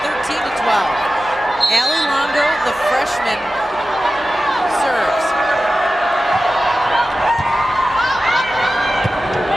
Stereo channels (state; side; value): normal; both; correlation 0.94